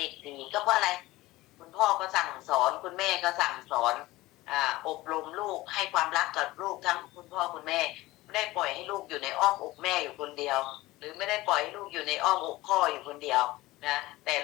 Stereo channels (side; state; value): right; quieter; 18.6 dB